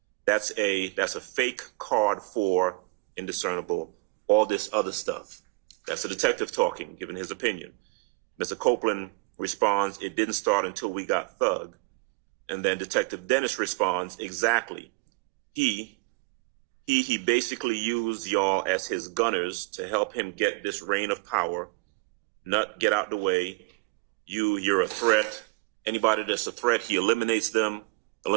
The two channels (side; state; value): left; quieter; 26.2 dB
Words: That's a fake card for indiscernible, all this other stuff. That's the detective talking, giving his opinion. Mr. Copeland responds, it didn't start until we got Thug. And then Detective Dennis responds, exactly. He basically used y'all as his gunners to help him get this reign of power. Nut, get out the way. You're a threat. Anybody that's a threat, he eliminates them.